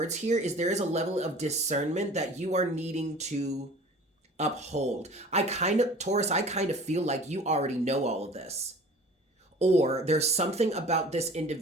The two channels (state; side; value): normal; both; correlation 0.44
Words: here is there is a level of discernment that you are needing to uphold. Taurus, I kind of feel like you already know all of this. Or there's something about this